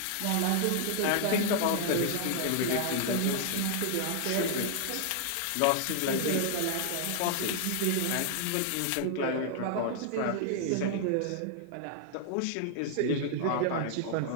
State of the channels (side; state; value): both; different; correlation -0.01